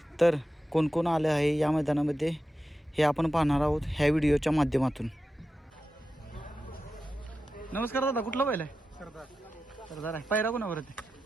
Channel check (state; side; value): normal; both; correlation 0.92